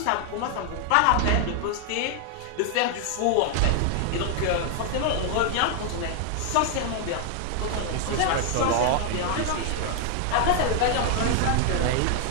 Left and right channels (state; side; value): different; both; correlation 0.00